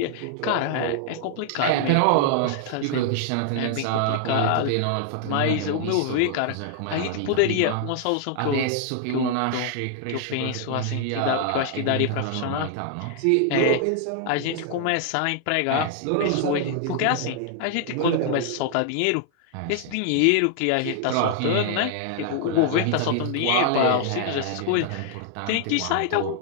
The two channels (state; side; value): different; both; correlation 0.00